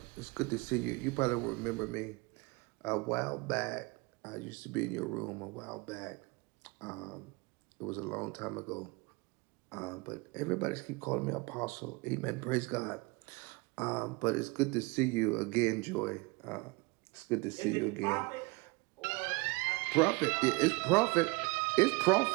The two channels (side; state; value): left; quieter; 26.4 dB